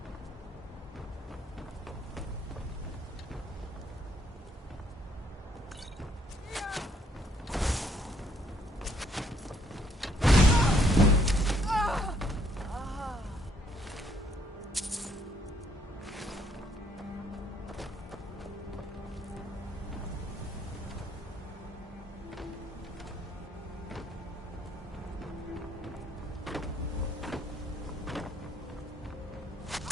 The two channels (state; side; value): normal; both; correlation 0.68